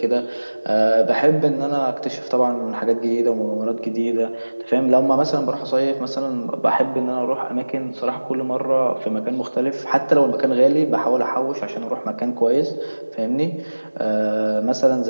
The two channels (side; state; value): both; inverted; correlation -1.00